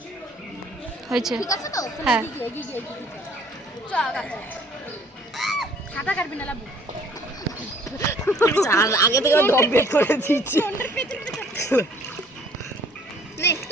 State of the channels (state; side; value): normal; both; correlation 0.57